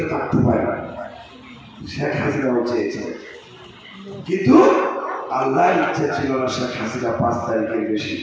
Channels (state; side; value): identical; both; correlation 1.00